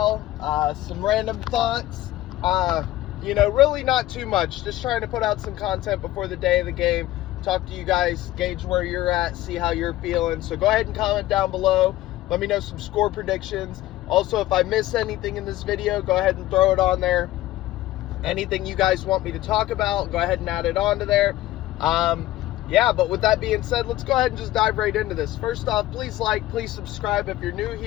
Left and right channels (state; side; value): quieter; right; 15.7 dB